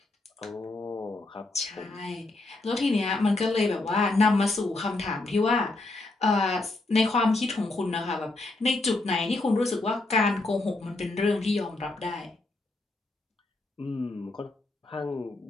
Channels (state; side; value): quieter; right; 3.0 dB